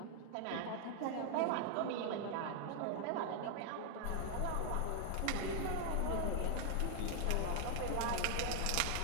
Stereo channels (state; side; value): different; both; correlation 0.00